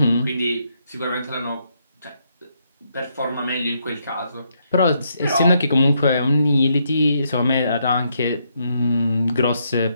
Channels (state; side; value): inverted; both; correlation -0.76